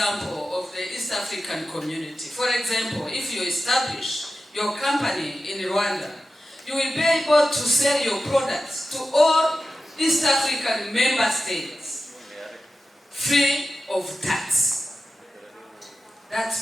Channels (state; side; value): normal; both; correlation 0.92